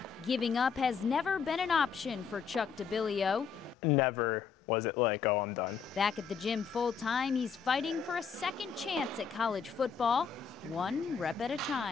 giving up has never been an option for Chuck Dibilio. Never was it like, oh, I'm done. Back at the gym full-time, he's fighting for a second chance at college football, one rep at a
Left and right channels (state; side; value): quieter; right; 6.3 dB